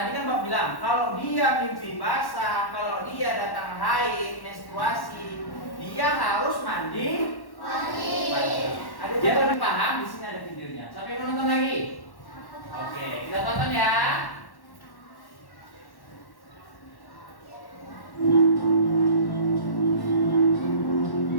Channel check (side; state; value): right; late; 1.1 ms